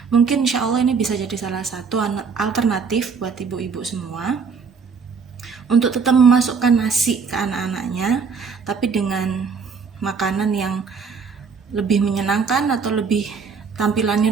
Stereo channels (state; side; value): quieter; left; 5.5 dB